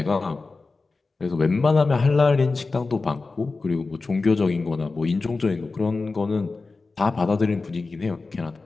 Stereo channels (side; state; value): right; quieter; 3.9 dB